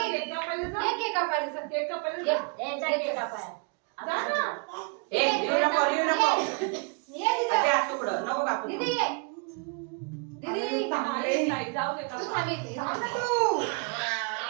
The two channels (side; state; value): left; quieter; 35.4 dB